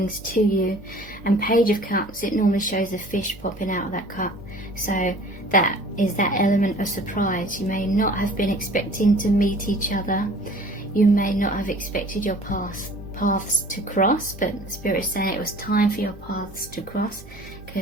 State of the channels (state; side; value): noise; right; hum, 18 dB below the sound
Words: to you. And Page of Cups, it normally shows a fish popping out of that cup. So that is that element of surprise. You may not have been expecting to meet each other. You may not have expected your paths to cross, but Spirit's saying it was time for your paths to cross,